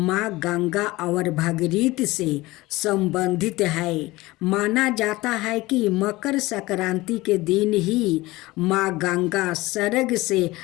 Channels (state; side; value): quieter; right; 19.9 dB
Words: गंगा और भागीरथी से संबंधित है। माना जाता है कि मकर संक्रांति के दिन ही माँ गंगा स्वर्ग से